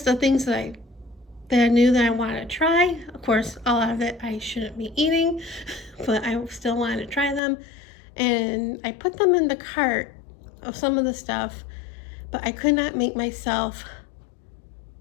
of things that I knew that I wanted to try. Of course, a lot of it I shouldn't be eating, but I still wanted to try them. And I put them in the cart of some of the stuff, but I could not make myself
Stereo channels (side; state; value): right; drops out; at 7.4 s